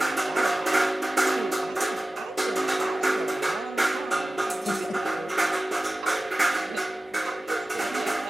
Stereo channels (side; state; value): both; normal; correlation 0.96